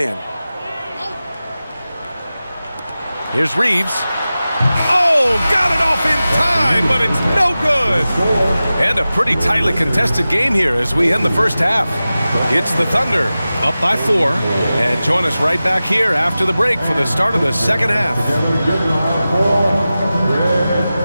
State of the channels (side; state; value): both; inverted; correlation -0.95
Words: Here's Reeves. Oh, got it off in time. line, but it's no good. And a pretty tightly contested game here as we end the first half. It's the Thunder up by 4. And join us right back here after the break for the start of the second half.